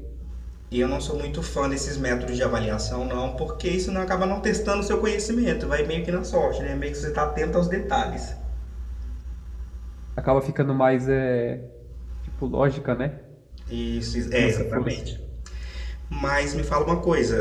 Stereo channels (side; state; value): both; identical; correlation 1.00